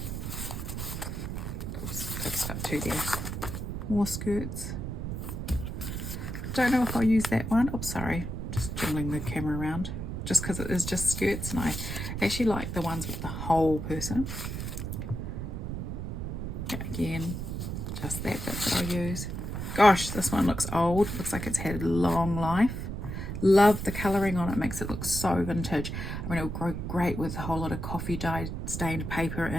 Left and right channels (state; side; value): noise; right; rumble, 5 dB below the sound